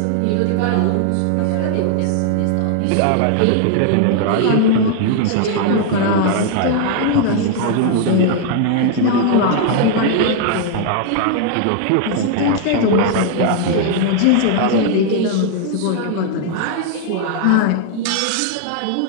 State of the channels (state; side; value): different; both; correlation 0.00